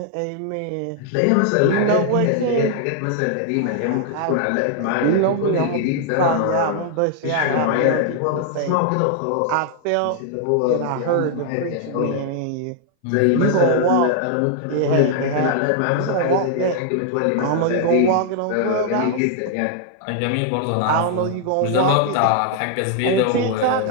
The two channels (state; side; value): different; both; correlation 0.00